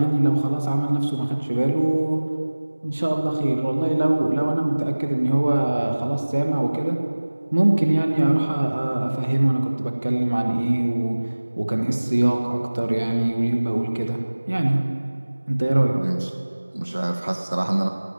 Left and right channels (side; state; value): both; inverted; correlation -1.00